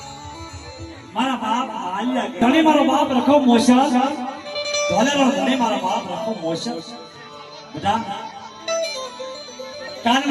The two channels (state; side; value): identical; both; correlation 1.00